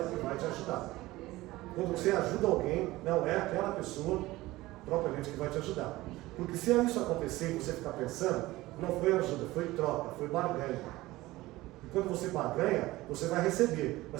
que vai te ajudar. Quando você ajuda alguém, não é aquela pessoa propriamente que vai te ajudar. Porque se isso acontecer e você ficar pensando, não foi ajuda, foi troca, foi barganha. E quando você barganha, você vai receber,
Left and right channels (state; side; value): quieter; left; 18.5 dB